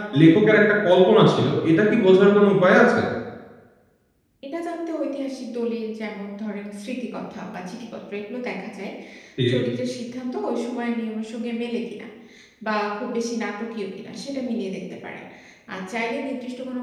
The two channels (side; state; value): both; identical; correlation 1.00